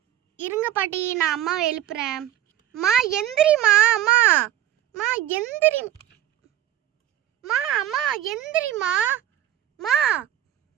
இருங்க பாட்டி, நான் அம்மாவை எழுப்புறேன். மா எந்திரிமா. அம்மா மா எந்திரி. அம்மா எந்திரிமா. மா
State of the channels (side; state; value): left; quieter; 12.5 dB